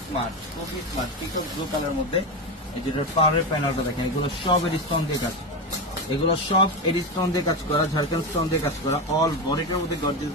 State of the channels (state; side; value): normal; both; correlation 0.16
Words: স্মার্ট পিকক ব্লু কালারের মধ্যে। এই যেটা পাওয়ারের প্যানেলটা দেখেন, এগুলো সব এডিস্টোন দিয়ে কাজ, এগুলো সব এডিস্টোন দিয়ে কাজ করা, ঝাড়খান্ড স্টোন দিয়ে কাজ করা। অল বডিটার মধ্যে গর্জিয়াস